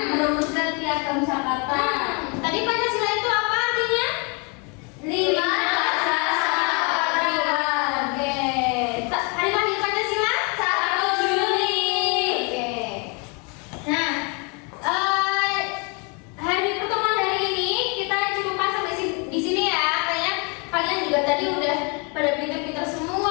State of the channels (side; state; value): right; quieter; 32.9 dB